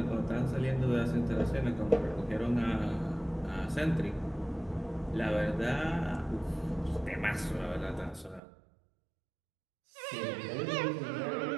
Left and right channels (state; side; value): drops out; left; at 8.4 s